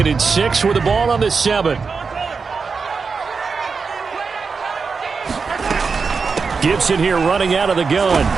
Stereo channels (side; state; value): left; quieter; 5.0 dB